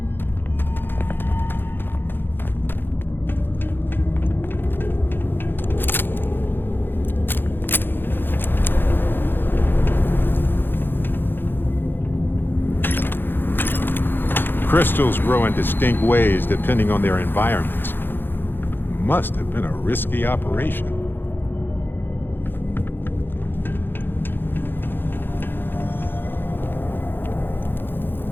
Crystals grow in distinct ways depending on their environments. Must have been a risky operation.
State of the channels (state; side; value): late; right; 0.099 ms